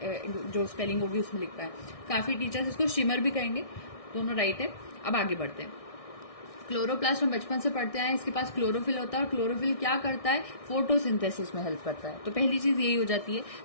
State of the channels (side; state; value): right; late; 1.6 ms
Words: जो स्पेलिंग होगी उसमें लिख पाए। काफी टीचर्स इसको शिमर भी कहेंगे, दोनों राइट है। अब आगे बढ़ते हैं। क्लोरोप्लास्ट हम बचपन से पढ़ते हैं, इसके पास क्लोरोफिल होता है, और क्लोरोफिल क्या करता है? फोटोसिंथेसिस में हेल्प करता है। तो पहली चीज यही हो जाती है,